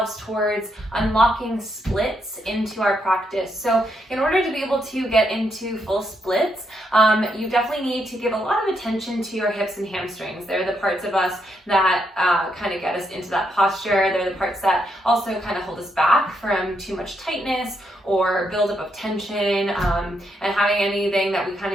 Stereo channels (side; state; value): both; normal; correlation 0.79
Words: towards unlocking splits into our practice. So in order to be able to get into full splits, you definitely need to give a lot of attention to your hips and hamstrings. They're the parts of us that kind of get us into that posture. They're the parts that also kind of hold us back from too much tightness or buildup of tension, and having anything that we kind